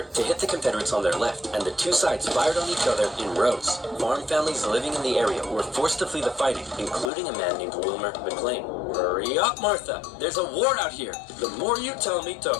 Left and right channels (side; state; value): right; drops out; at 7.1 s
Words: to hit the Confederates on their left, and the two sides fired on each other in rows. Farm families living in the area were forced to flee the fighting, including a man named Wilmer McLean. Hurry up, Martha! There's a war out here. The more you tell me to